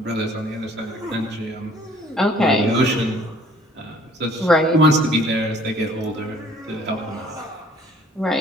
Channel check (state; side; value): normal; both; correlation 0.57